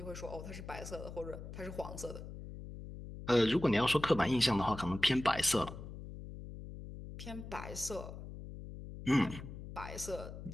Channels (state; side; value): noise; left; hum, 11 dB below the sound